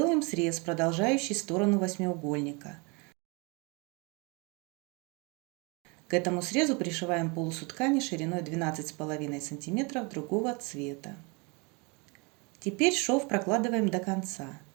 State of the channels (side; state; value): left; quieter; 30.0 dB